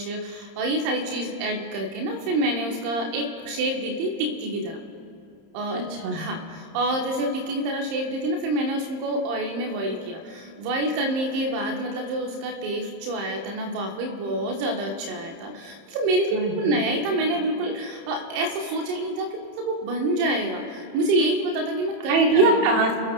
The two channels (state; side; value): late; left; 30 ms